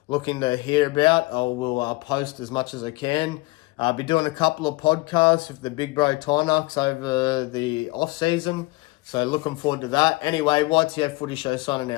looking to hear about, I will post as much as I can. I'll be doing a couple of podcasts with the Big Bro Tynucks over the off-season. So looking forward to that. Anyway, YTF Footy Show signing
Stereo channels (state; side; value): quieter; right; 22.8 dB